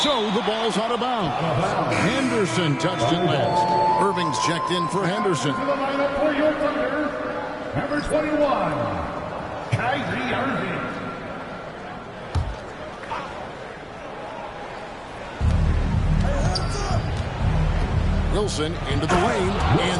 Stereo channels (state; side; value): identical; both; correlation 1.00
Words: the ball's out of bounds. Henderson touched it last. Irving's checked in for Henderson. To the lineup for your Thunder, number 21, Kyrie Irving. Wilson into the lane,